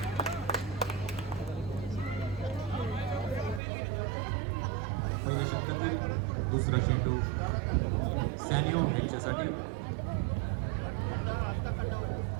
पहिल्या षटकातील दुसरा चेंडू सॅनिओ यांच्यासाठी.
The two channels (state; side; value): drops out; left; at 3.6 s